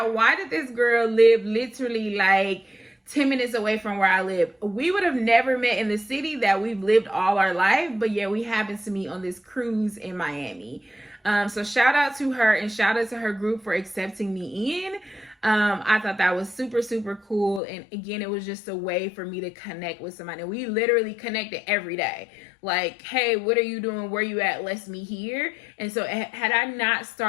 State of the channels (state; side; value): drops out; right; at 17.6 s